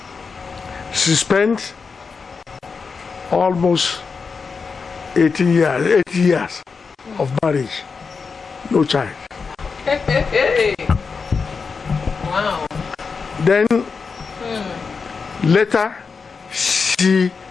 She spent almost 80 years of marriage, no child. Wow. Then later she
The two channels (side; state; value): right; quieter; 5.1 dB